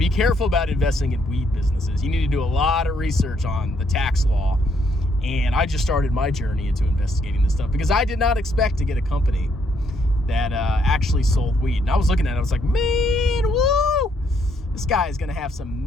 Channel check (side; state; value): both; normal; correlation 0.72